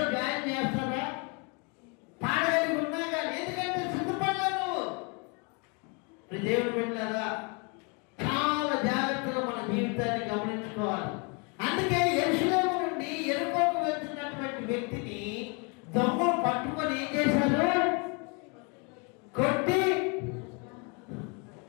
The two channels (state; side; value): quieter; right; 33.4 dB